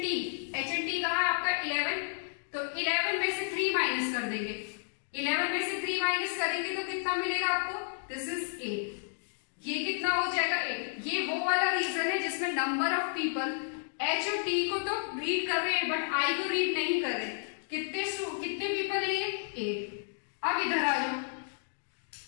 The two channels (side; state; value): right; silent; digital silence